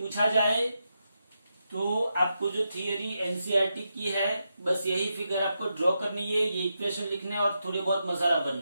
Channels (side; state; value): both; inverted; correlation -0.85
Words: जाए तो आपको जो थियरी एनसीईआरटी की है, बस यही फिगर आपको ड्रॉ करनी है, ये इक्वेशन लिखने और थोड़े बहुत मसाला